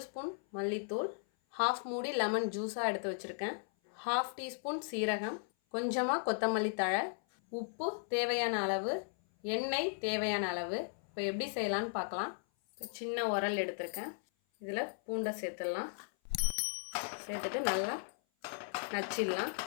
ஸ்பூன் மல்லித்தூள், 1/2 மூடி லெமன் ஜூஸாக எடுத்து வச்சுருக்கேன், 1/2 டீஸ்பூன் சீரகம், கொஞ்சமாக கொத்தமல்லி தழை, உப்பு தேவையான அளவு, எண்ணெய் தேவையான அளவு. இப்போ எப்படி செய்யலான்னு பார்க்கலாம். சின்ன உரல் எடுத்திருக்கேன், இதில் பூண்டை சேர்த்துடலாம். சேர்த்துட்டு நல்லா நச்சிடலாம்.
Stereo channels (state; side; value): silent; right; 54 dB below the other